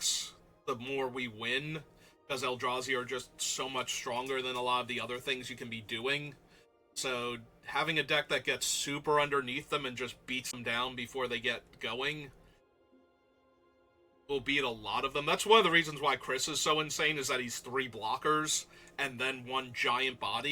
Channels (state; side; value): identical; both; correlation 1.00